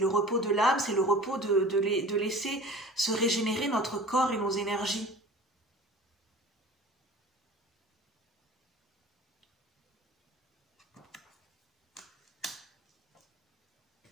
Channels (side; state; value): both; normal; correlation 0.41